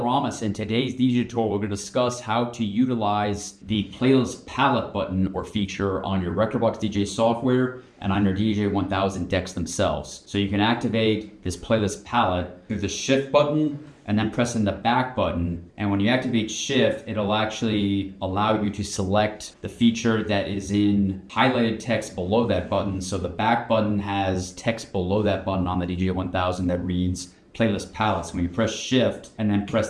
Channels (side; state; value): both; identical; correlation 1.00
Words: In today's DJ tutorial, we're going to discuss how to utilize the playlist palette button or feature on your Rekordbox DJ software and on your DDJ-1000 decks themselves. So you can activate this playlist palette through the shift button and then pressing the back button. And when you activate shift, it'll actually allow you to select the feature that is in highlighted text below that button. So the back button has text below that button on the DJ-1000 that reads playlist palettes. When you press shift and then press